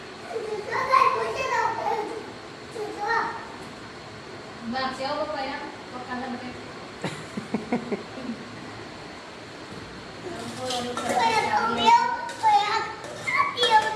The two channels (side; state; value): both; identical; correlation 1.00